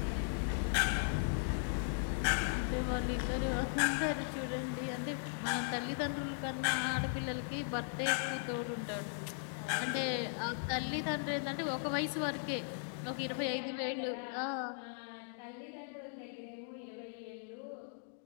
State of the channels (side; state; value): right; silent; digital silence